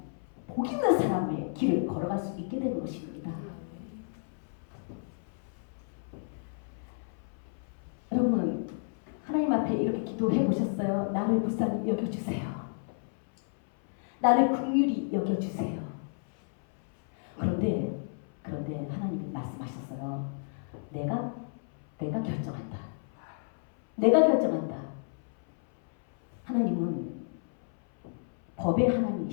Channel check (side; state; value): right; silent; 57 dB below the other